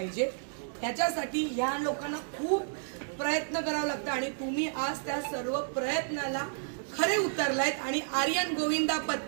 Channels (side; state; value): left; silent; digital silence